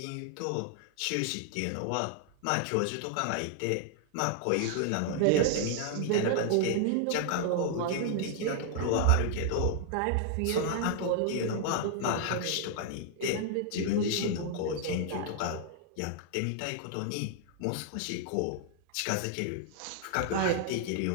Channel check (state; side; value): different; both; correlation 0.00